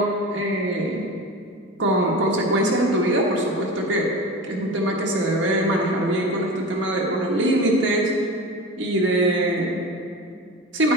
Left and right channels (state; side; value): normal; both; correlation 0.30